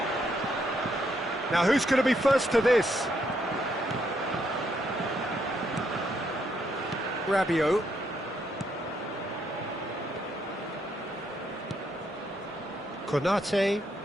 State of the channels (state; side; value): normal; both; correlation 0.75